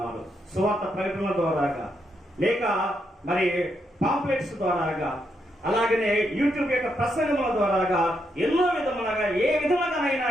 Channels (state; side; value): normal; both; correlation 0.80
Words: సువార్త ప్రకటన ద్వారాగా లేక మరి పాంప్లెట్స్ ద్వారాగా అలాగనే యూట్యూబ్ యొక్క ప్రసంగముల ద్వారాగా ఎన్నో విధములుగా ఏ విధముగానైనా